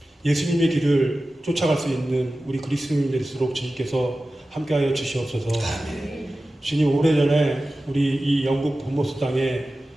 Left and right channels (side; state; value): both; normal; correlation 0.95